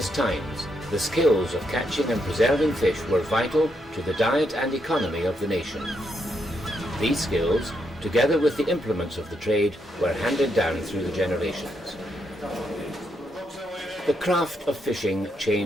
times, the skills of catching and preserving fish were vital to the diet and economy of the nation. These skills, together with the implements of the trade, were handed down through the generations. The craft of fishing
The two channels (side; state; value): both; normal; correlation 0.79